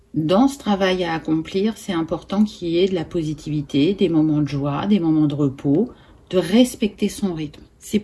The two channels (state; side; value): identical; both; correlation 1.00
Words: dans ce travail à accomplir, c'est important qu'il y ait de la positivité, des moments de joie, des moments de repos, de respecter son rythme. C'est